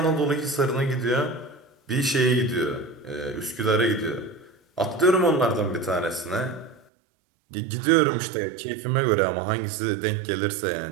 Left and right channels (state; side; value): drops out; left; at 6.9 s